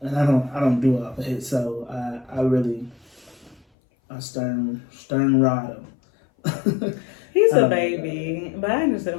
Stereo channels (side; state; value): right; drops out; at 3.6 s